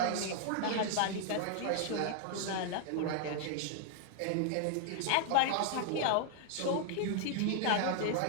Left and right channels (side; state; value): both; different; correlation 0.00